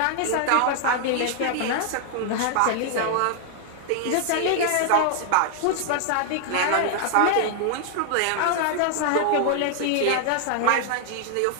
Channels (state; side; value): different; both; correlation 0.00